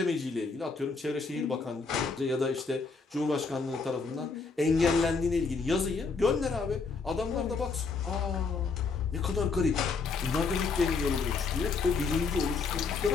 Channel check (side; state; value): right; quieter; 4.7 dB